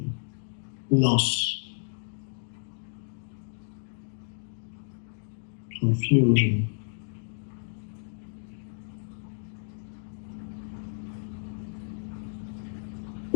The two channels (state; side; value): silent; right; digital silence